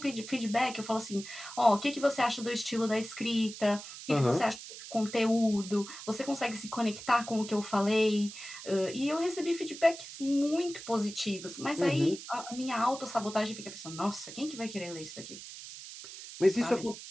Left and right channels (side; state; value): right; noise; hiss, 12 dB below the sound